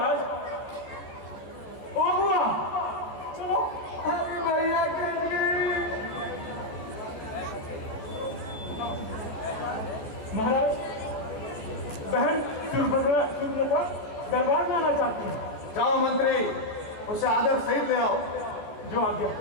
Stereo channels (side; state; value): right; late; 14 ms